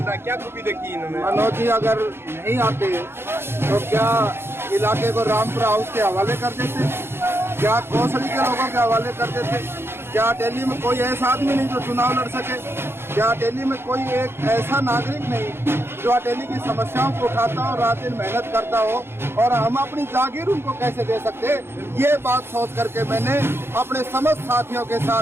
रहा, क्या खूबी देखी इन्होंने? मनोज जी अगर नहीं आते तो क्या इलाके को रामपुरा हाउस के हवाले कर देते, क्या कौशली के लोगों के हवाले कर देते, क्या दिल्ली में कोई ऐसा आदमी नहीं जो चुनाव लड़ सके, क्या दिल्ली में कोई एक ऐसा नागरिक नहीं जो दिल्ली की समस्याओं को उठाता हो, रात दिन मेहनत करता हो, और हम अपनी जागीर उनको कैसे दे सकते, ये बात सोच करके मैंने अपने समस्त साथियों के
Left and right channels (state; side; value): late; left; 0.11 ms